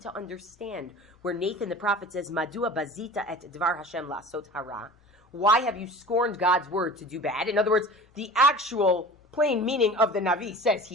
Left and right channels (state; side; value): normal; both; correlation 0.39